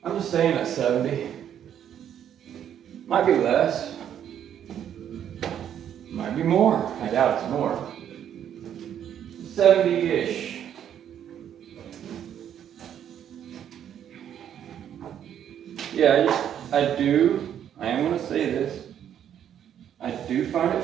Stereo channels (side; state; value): left; quieter; 9.7 dB